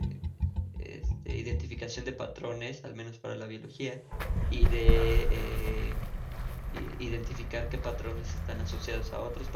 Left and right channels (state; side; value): identical; both; correlation 1.00